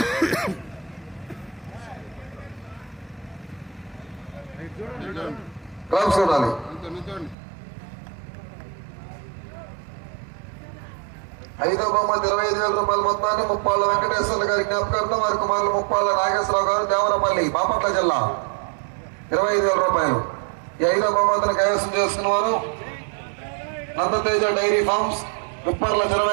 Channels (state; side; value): drops out; left; at 7.4 s